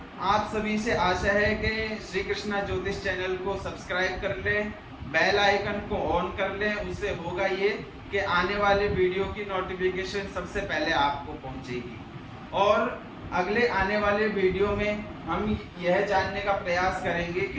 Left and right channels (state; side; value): identical; both; correlation 1.00